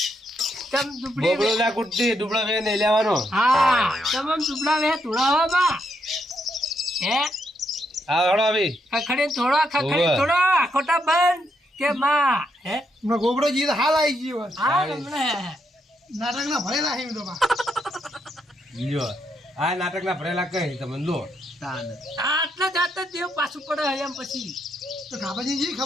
તમ દુબળી બોબડો ના કુટતી ડુબળો વે નહીં લેવાનો. હા તમ દુબળા વે તુડાવા બા હે હા હળો આવી ખખડી ઓવે. થોડો ખોટા બંધ કે માં હે હમણાં ગોબરોજી તો હાલ આવી ગયો હોય. હા રમણે નાટકના ભરેલા છે એમ તો બા. લ્યો આ નાટકના ભરેલા કઈ તમે લો આટલા જાતા દેવ પાછું પડે એમ પછી તો ખાબાજી જી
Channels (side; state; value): both; normal; correlation 0.78